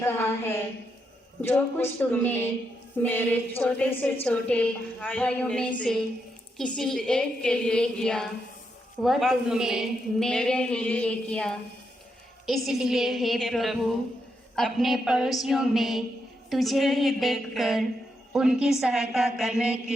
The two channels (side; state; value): both; normal; correlation 0.82